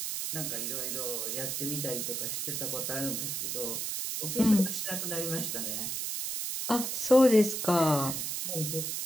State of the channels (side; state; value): right; noise; hiss, 2 dB below the sound